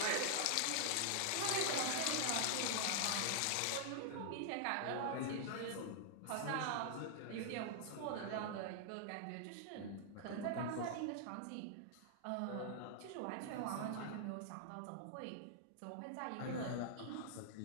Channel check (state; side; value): different; both; correlation -0.01